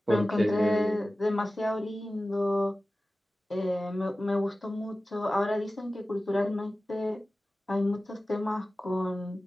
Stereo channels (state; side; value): normal; both; correlation 0.96